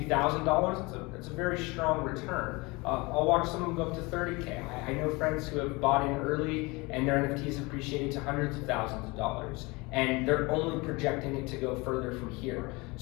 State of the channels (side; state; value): right; quieter; 25.1 dB